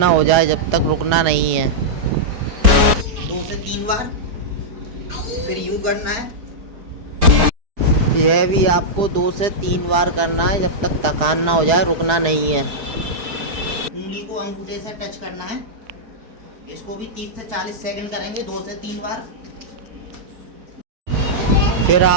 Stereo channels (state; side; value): late; left; 4.8 ms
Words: हो जाए, जब तक रुकना नहीं है। 2 से 3 बार। फिर यूं करना है। यह भी आपको 2 से 3 बार करना है, जब तक थकान ना हो जाए, रुकना नहीं है। उंगली को अंगूठे से टच करना है। इसको भी 30 से 40 सेकंड करेंगे, 2 से 3 बार। फिर